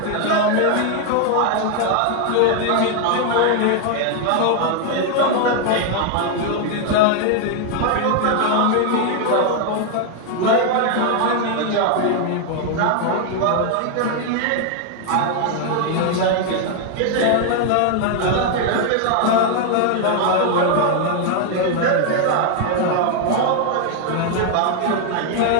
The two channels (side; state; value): both; different; correlation 0.00